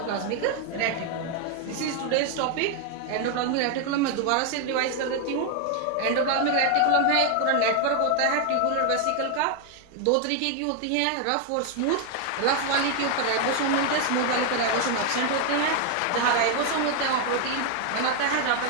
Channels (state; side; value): different; both; correlation 0.00